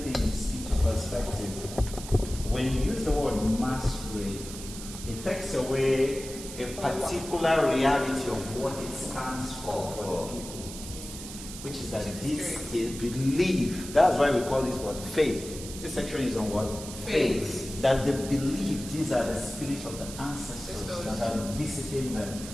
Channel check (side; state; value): right; noise; hiss, 11 dB below the sound